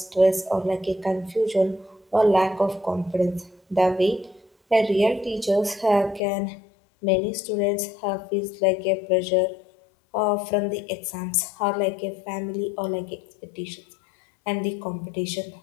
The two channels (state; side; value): drops out; right; at 6.2 s